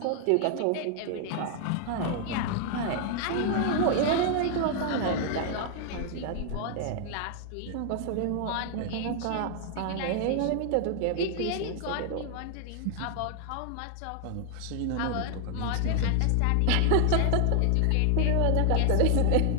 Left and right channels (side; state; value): both; different; correlation 0.00